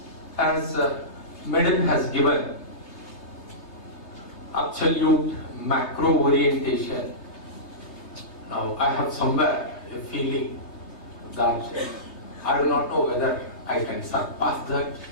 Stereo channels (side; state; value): right; late; 3.3 ms